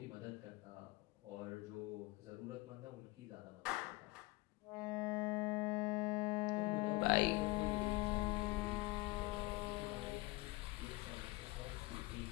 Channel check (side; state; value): right; quieter; 22.2 dB